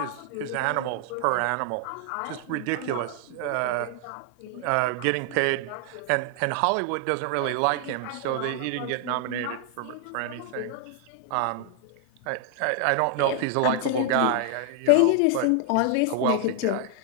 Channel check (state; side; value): different; both; correlation 0.00